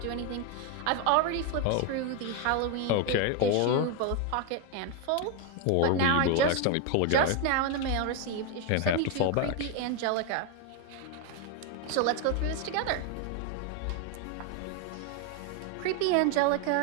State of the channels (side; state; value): both; different; correlation 0.01